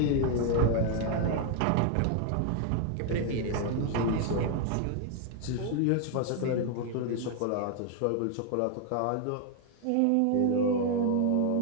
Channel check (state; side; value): different; both; correlation 0.00